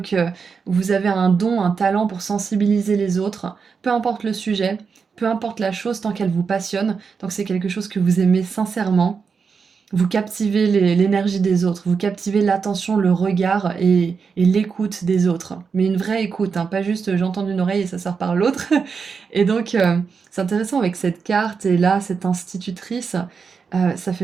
vous avez un don, un talent pour sensibiliser les autres, peu importe le sujet, peu importe la chose, tant qu'elle vous passionne, tant que c'est quelque chose que vous aimez sincèrement. Vous captivez l'énergie des autres, vous captivez l'attention, le regard et l'écoute des autres. Mais une vraie écoute, hein, pas juste j'entends d'une oreille et ça sort par l'autre. Et donc, c'est intéressant avec cette carte et là, cette institutrice, ça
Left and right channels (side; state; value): left; quieter; 5.6 dB